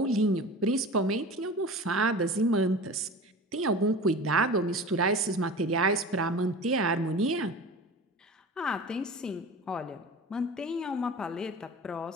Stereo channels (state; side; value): normal; both; correlation 0.35